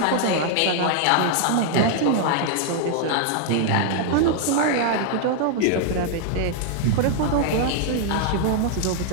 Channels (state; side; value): different; both; correlation 0.00